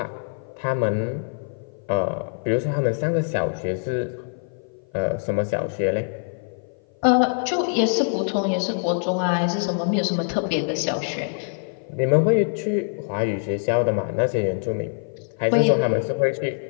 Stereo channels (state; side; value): silent; right; 56 dB below the other